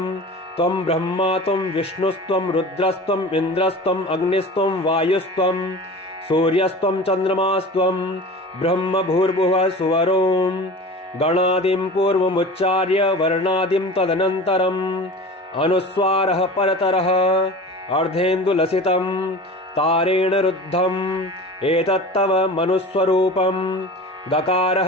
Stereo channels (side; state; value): both; normal; correlation 0.36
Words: त्वं ब्रह्मा त्वं विष्णुस्त्वं रुद्रस्त्वं इन्द्रस्त्वं अग्निस्त्वं वायुस्त्वं सूर्यस्त्वं चन्द्रमास्त्वं ब्रह्म भूर्भुवः सुवरों गणादिं पूर्वमुच्चार्य वर्णादिं तदनन्तरम् अनुस्वारः परतरः अर्धेन्दुलसितं तारेण रुद्धम् एतत्तव मनुस्वरूपं